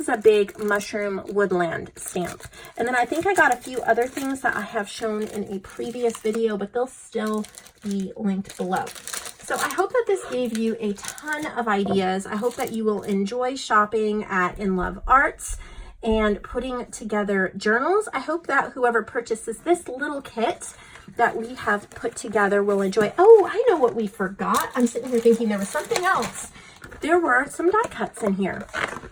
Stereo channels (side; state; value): both; identical; correlation 1.00